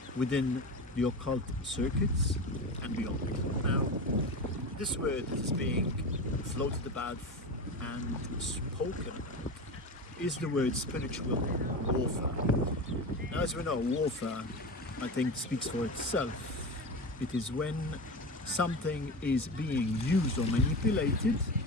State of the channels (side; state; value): both; normal; correlation 0.25